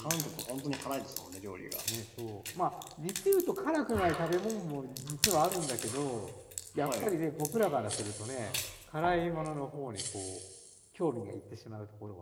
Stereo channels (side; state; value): both; identical; correlation 1.00